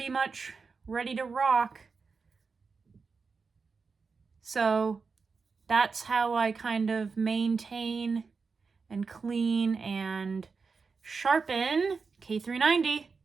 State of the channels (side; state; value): left; quieter; 4.9 dB